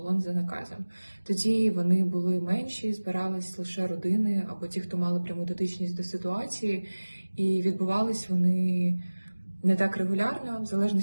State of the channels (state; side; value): inverted; both; correlation -1.00